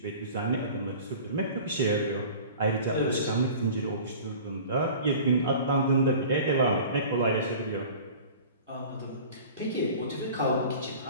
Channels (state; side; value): inverted; both; correlation -0.41